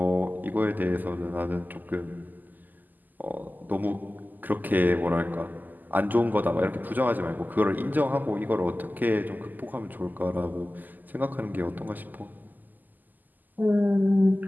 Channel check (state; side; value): late; left; 0.085 ms